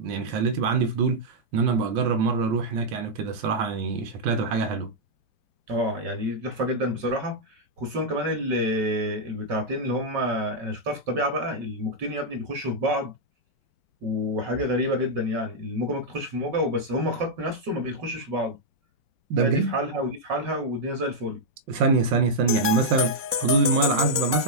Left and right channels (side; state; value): left; late; 4.2 ms